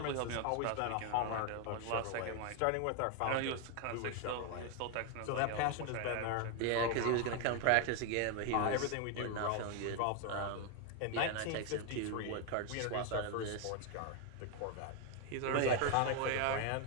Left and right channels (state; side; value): different; both; correlation 0.01